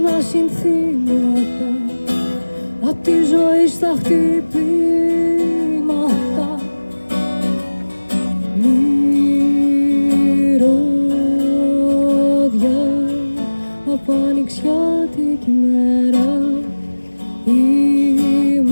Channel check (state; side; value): inverted; both; correlation -1.00